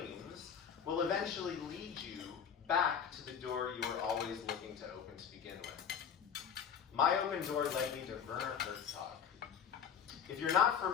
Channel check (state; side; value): quieter; right; 7.6 dB